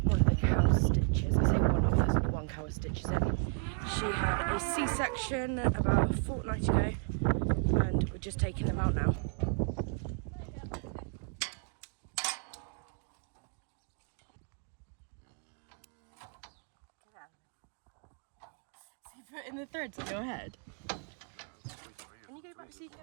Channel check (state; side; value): quieter; left; 39.7 dB